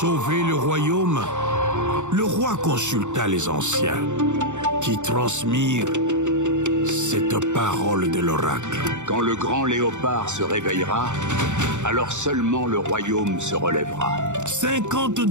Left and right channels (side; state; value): left; late; 0.84 ms